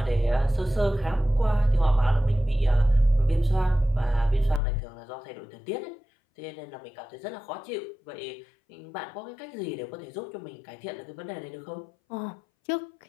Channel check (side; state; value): right; drops out; at 4.6 s